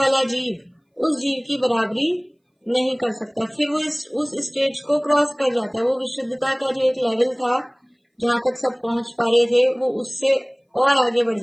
जीव उस जीव की बराबरी नहीं कर सकता, फिर वो उस स्टेज को क्रॉस कर जाता है। वो विशुद्धता का जो एक लेवल था जहां तक सब पहुंच पा रहे थे, वो उससे और आगे बढ़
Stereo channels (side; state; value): both; identical; correlation 1.00